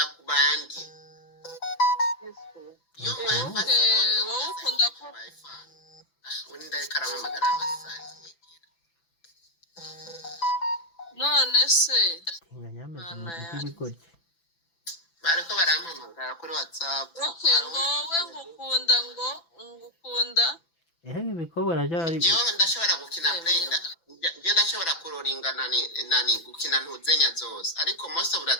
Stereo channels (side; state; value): right; late; 6.0 ms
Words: kubandi wowe ukunda ko undi ariko aramamagara amasazi none se Tinganyameze n'ibigoryi. bariko barampamagara kuri WhatsApp. Okay, wowe ngukunda ibikobwa byari jewe ndashobora gukina playing je ndashobora kuroringa nani gukina ntuzenya zose ariko most of the